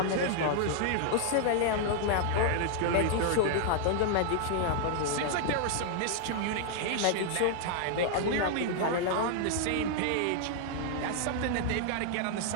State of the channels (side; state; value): both; different; correlation 0.00